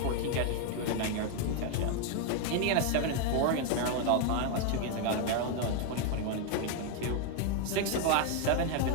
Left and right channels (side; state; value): both; different; correlation 0.01